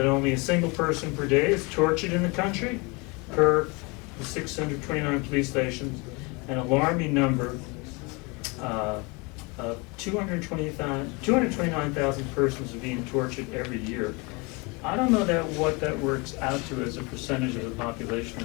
only a single person per day is tortured in the country, per the 629 police stations, an alarming number of 229,000 persons are being tortured every year. I don't know what that works out to as a percentage of the population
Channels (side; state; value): right; quieter; 28.3 dB